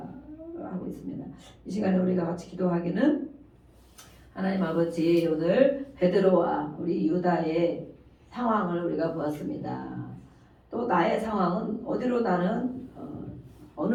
있습니다. 이 시간에 우리가 같이 기도하기는 하나님 아버지 오늘 베드로와 우리 유다의 상황을 우리가 보았습니다. 또 나의 상황은 어디로 나는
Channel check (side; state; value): both; identical; correlation 1.00